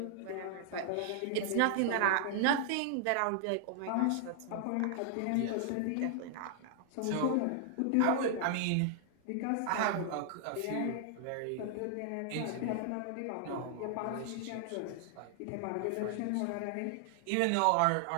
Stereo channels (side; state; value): both; different; correlation 0.00